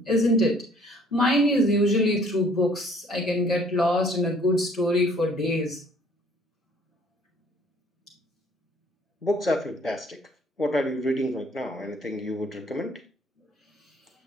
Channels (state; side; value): normal; both; correlation 0.58